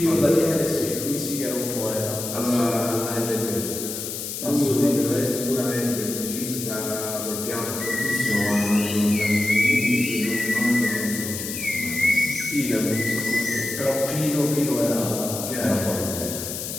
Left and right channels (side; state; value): left; noise; hiss, 6 dB below the sound